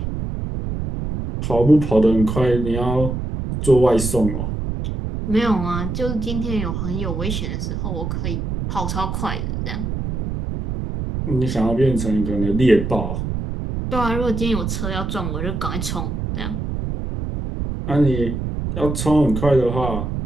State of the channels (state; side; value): noise; right; rumble, 3 dB below the sound